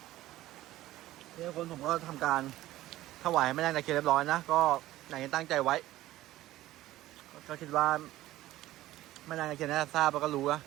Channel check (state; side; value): quieter; left; 15.5 dB